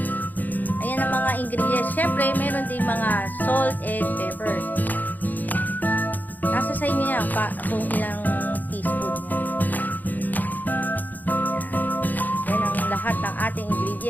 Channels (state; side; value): late; right; 0.084 ms